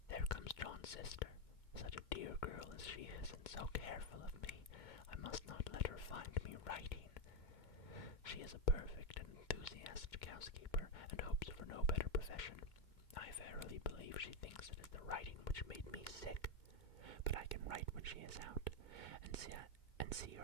There comes John's sister. Such a dear girl as she is, and so careful of me. I must not let her find me writing. She is a perfect and enthusiastic housekeeper, and hopes for no better profession. I verily believe she thinks it is the writing which made me sick, but I can write when she is out, and see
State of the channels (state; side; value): late; right; 2.2 ms